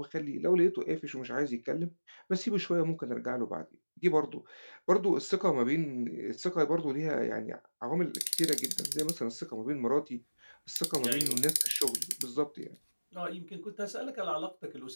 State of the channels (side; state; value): both; inverted; correlation -1.00